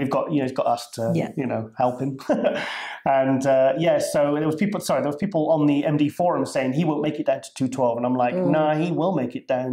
got, you know, he's got us to, you know, help him. And, so there was people on the MD forum saying he won't make it down to 212, and I'm like, nah, he will make it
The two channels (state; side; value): identical; both; correlation 1.00